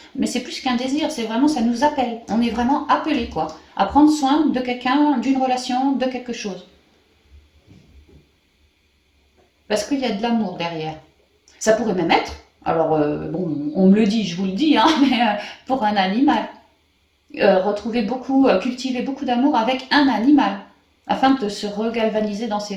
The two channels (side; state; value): both; identical; correlation 1.00